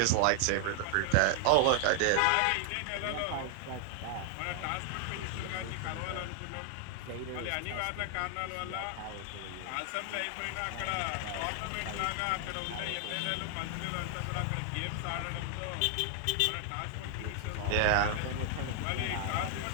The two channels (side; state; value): both; different; correlation 0.00